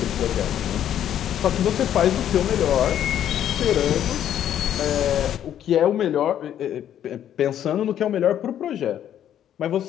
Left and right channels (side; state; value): right; quieter; 10.5 dB